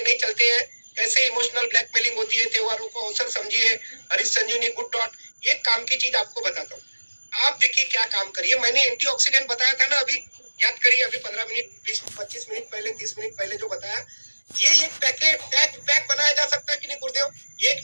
नहीं चलते हैं, कैसे इमोशनल ब्लैकमेलिंग होती है। त्योहारों को अवसर समझिए। हरीश संजीवनी गुड डॉट, एक काम की चीज आपको बताता हूँ। आप देखिए क्या काम करिए। मैंने एंटीऑक्सीडेंट बताया था ना अभी, याद करिए अभी 15 मिनट 20-25 मिनट पहले, 30 मिनट पहले जो बताया। ये एक पैकेट पैक बनाया जा सकता है कि नहीं गुरुदेव? एक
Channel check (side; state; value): both; inverted; correlation -1.00